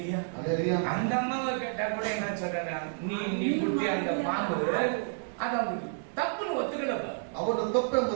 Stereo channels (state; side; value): silent; left; 58 dB below the other